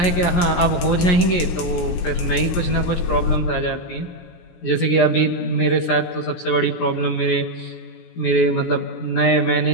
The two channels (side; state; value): right; late; 17 ms